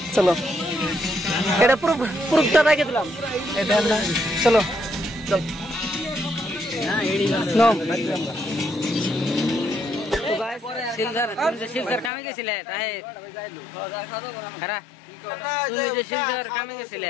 চলো এটা পুরোটা রাখে দিলাম চলো চল নো শিলচর কামে গেছিলে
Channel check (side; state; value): right; drops out; at 12.1 s